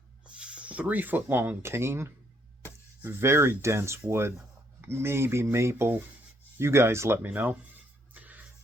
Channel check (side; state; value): both; normal; correlation 0.71